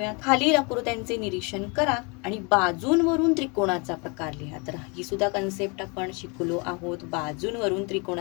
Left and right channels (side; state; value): right; quieter; 31.4 dB